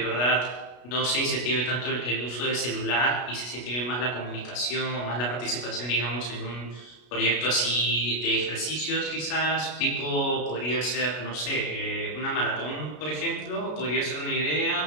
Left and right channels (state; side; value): late; right; 33 ms